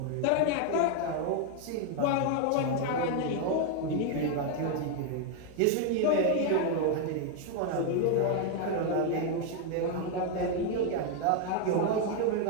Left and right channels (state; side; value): different; both; correlation 0.01